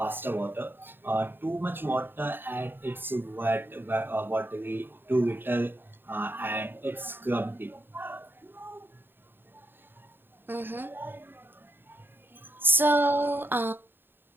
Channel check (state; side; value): late; left; 0.098 ms